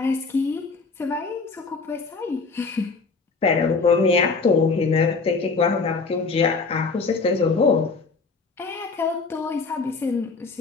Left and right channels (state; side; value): quieter; right; 4.4 dB